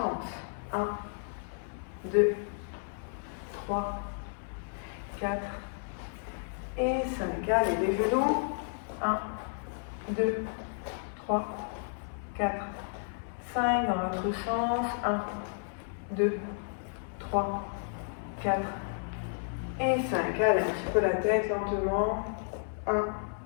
1, 2, 3, 4 et 5. Allez, les genoux. 1, 2, 3, 4, 5. Dans l'autre sens. 1, 2, 3, 4 et 5. Allez, un petit peu la tête lentement. 1,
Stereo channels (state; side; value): silent; right; 56 dB below the other